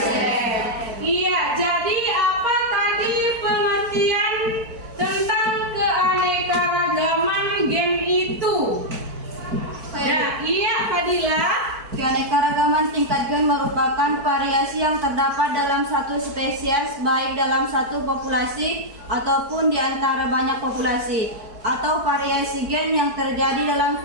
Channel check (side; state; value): left; late; 4.5 ms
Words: Iya, jadi apa tadi pengertian tentang keanekaragaman gen itu? Nah, iya Fadila. Keanekaragaman tingkat gen merupakan variasi yang terdapat dalam satu spesies, baik dalam satu populasi ataupun di antara banyak populasi, atau variasi gen yang terjadi dalam